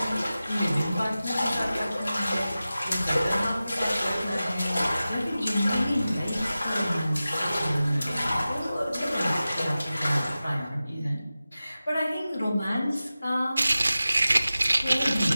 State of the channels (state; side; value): inverted; both; correlation -0.95